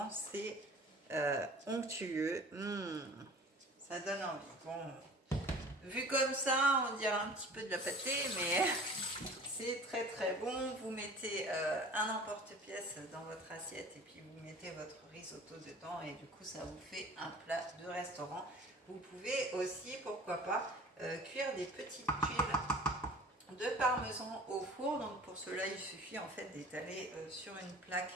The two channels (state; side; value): normal; both; correlation 0.45